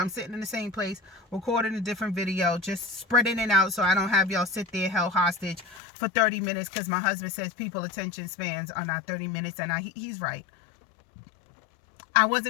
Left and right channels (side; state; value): right; drops out; at 5.8 s